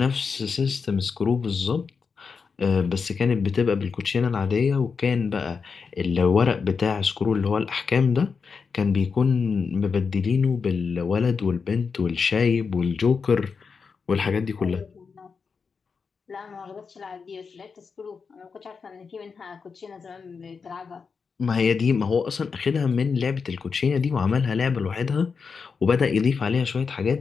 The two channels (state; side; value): quieter; right; 5.4 dB